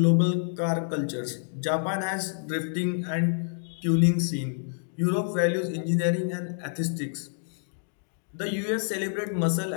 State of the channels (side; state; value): right; silent; digital silence